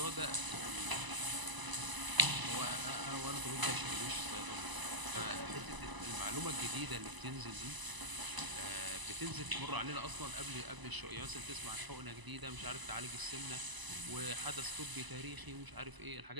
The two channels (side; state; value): left; late; 1.0 ms